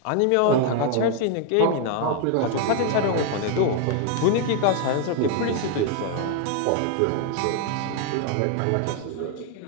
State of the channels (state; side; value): different; both; correlation 0.01